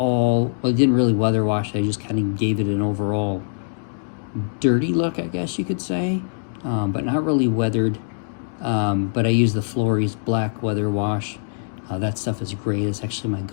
well, I didn't really weather wash, I just kind of gave it an overall dirty look, I guess you could say, but not really weathered. But I used the Flores black weather wash. That stuff is great. It's actually my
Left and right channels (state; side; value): silent; right; digital silence